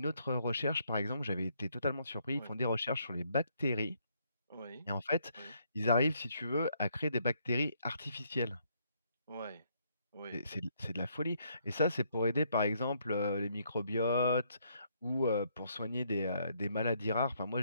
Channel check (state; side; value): inverted; both; correlation -0.71